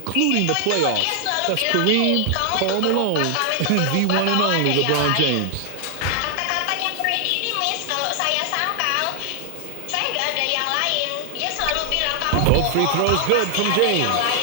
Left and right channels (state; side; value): different; both; correlation 0.00